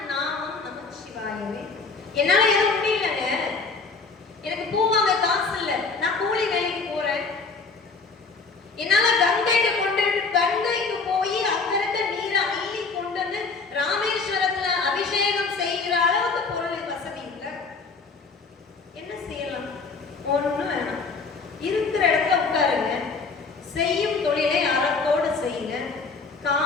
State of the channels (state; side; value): quieter; right; 4.4 dB